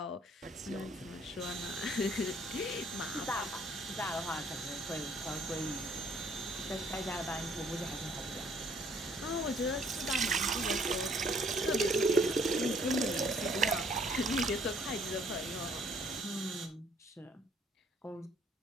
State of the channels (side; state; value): both; normal; correlation 0.63